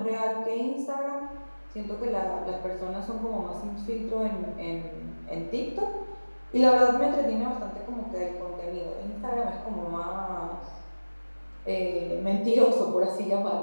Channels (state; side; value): inverted; both; correlation -1.00